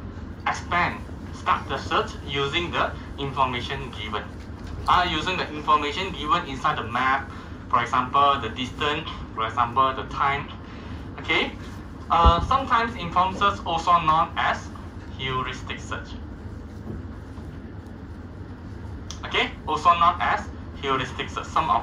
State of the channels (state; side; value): identical; both; correlation 1.00